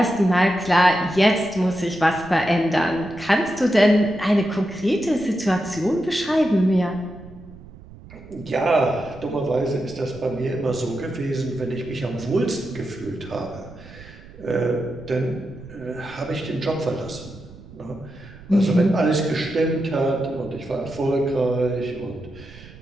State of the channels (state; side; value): noise; right; rumble, 19 dB below the sound